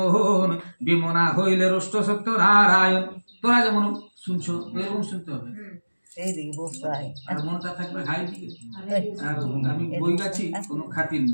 বিমনা হইলে রুষ্ট সত্য নারায়ণ। তোরা যেমন শুনছো এরকম শুনতে হবে, আর মনটা থাকবে ঘাই দিকে, আর আমি বই গাছি কোনো খাতির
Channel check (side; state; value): both; inverted; correlation -1.00